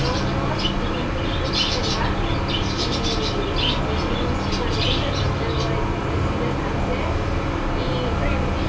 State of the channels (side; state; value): both; identical; correlation 1.00